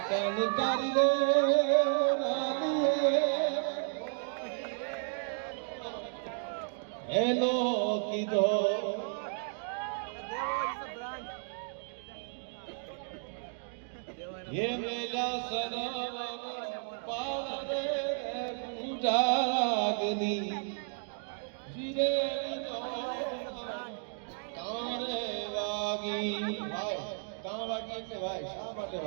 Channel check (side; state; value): left; silent; digital silence